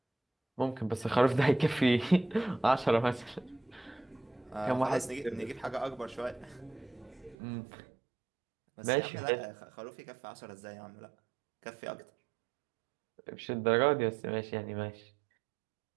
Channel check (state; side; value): drops out; left; at 7.4 s